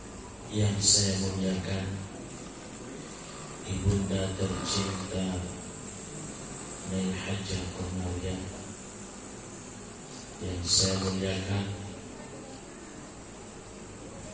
Yang saya muliakan Ibunda tercinta Nyai Hajah Komaria, yang saya muliakan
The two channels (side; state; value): both; identical; correlation 1.00